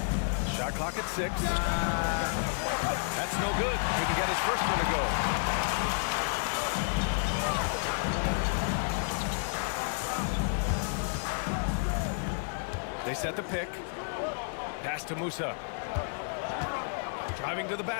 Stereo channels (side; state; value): right; silent; digital silence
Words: Shot clock at 6. That's no good. Couldn't get his first one to go. They set the pick. Pass to Musa. Driving to the